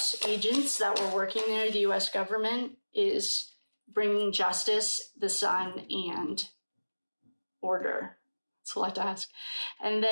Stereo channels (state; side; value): inverted; both; correlation -1.00